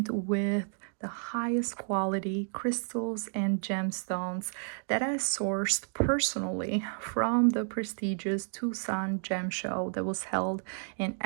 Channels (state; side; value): silent; left; 57 dB below the other